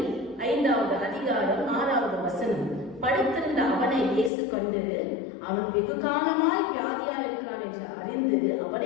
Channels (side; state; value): right; drops out; at 4.3 s